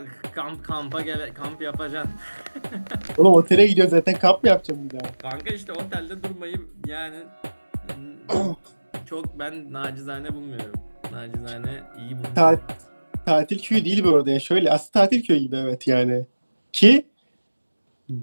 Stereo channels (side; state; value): both; inverted; correlation -1.00